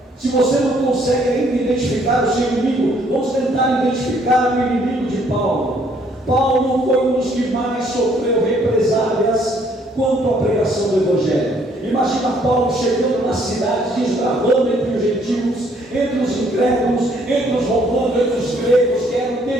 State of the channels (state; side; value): normal; both; correlation 0.65